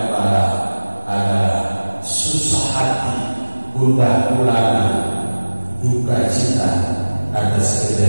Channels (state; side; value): inverted; both; correlation -1.00